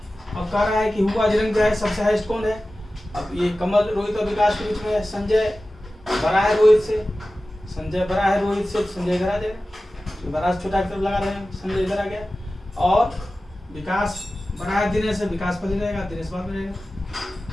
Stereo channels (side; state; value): both; normal; correlation 0.95